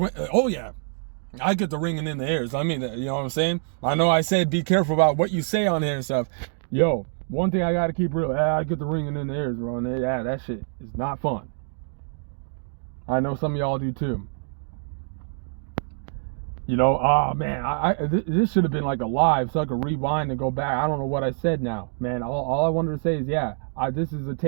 Oh yeah, I get the ringing in the ears. I mean, you know what I'm saying? I know I said be careful about what you say on here and stuff. Yo, one thing I gotta keep real. I get the ringing in the ears, bro. And yeah, that shit is not fun. I know some of y'all do too. You know, man, this should have been like a live so I could rewind and go back. I don't know what I said now, man. All I wanted to say is, yeah, this is a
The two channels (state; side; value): silent; left; digital silence